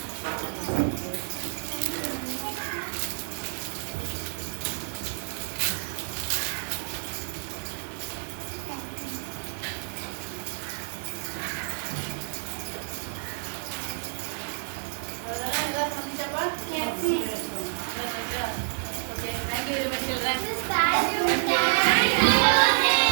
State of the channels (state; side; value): silent; left; 59 dB below the other